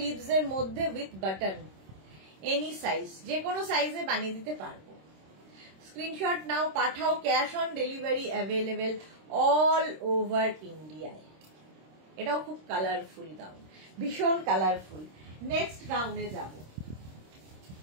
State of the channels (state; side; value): late; left; 26 ms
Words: এর মধ্যে উইথ বাটন, এনি সাইজ, যে কোনো সাইজে বানিয়ে দিতে পারবো। Screenshot now, Pathao, cash on delivery available all over ইন্ডিয়ায়। এটাও খুব কালারফুল গাউন, ভীষণ কালারফুল। নেক্সট গাউনে যাব।